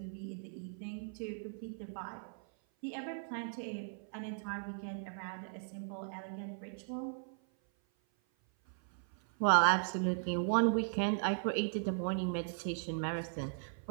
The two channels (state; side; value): silent; left; 53 dB below the other